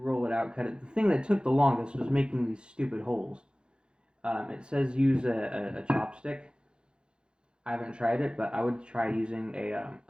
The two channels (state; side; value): late; left; 0.051 ms